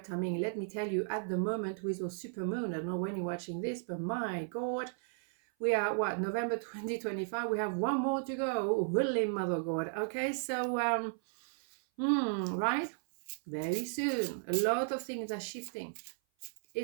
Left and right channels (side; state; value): left; silent; 55 dB below the other